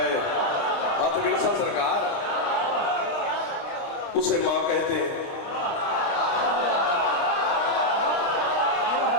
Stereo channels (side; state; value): right; late; 29 ms